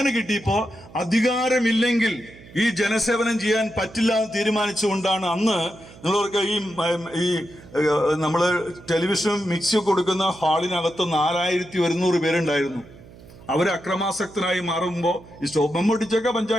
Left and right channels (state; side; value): noise; right; hum, 21 dB below the sound